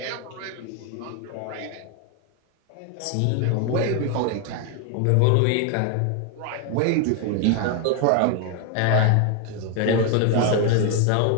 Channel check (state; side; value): different; both; correlation 0.01